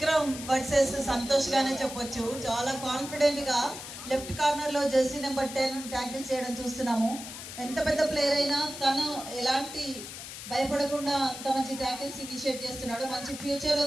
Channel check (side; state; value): left; noise; hiss, 11 dB below the sound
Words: వర్సెస్ సంతోష్ గానే చెప్పొచ్చు. చాలా కాన్ఫిడెంట్ గా లెఫ్ట్ కార్నర్ లో జెర్సీ నెంబర్ 10 ట్యాకిల్ చేయడం చూస్తున్నాము. ఎంత పెద్ద ప్లేయర్ అయినా తను ఎలాంటి భయపడకుండా అంత మంచి ట్యాకిల్స్ ఇనిషియేట్ చేస్తున్నాడు. మంచి ఫ్యూచర్